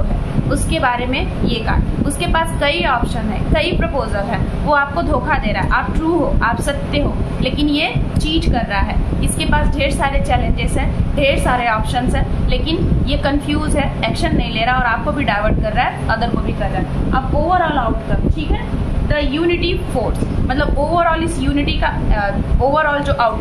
है, उसके बारे में ये कार्ड। उसके पास कई ऑप्शन है, कई प्रपोजल है, वो आपको धोखा दे रहा है, आप ट्रू हो, आप सत्य हो, लेकिन ये चीट कर रहा है। इसके पास ढेर सारे चैलेंजेस हैं, ढेर सारे ऑप्शंस हैं, लेकिन ये कंफ्यूज है, एक्शन नहीं ले रहा और आपको भी डाइवर्ट कर रहा है, अदर को भी कर रहा है। अब ओवरऑल आउटकम, ठीक है, द यूनिटी फोर्स, मतलब ओवरऑल इस यूनिटी का ओवरऑल जो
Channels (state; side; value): identical; both; correlation 1.00